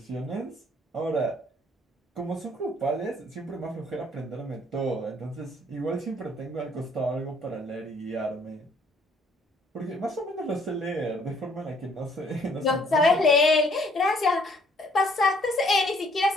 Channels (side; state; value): both; normal; correlation 0.63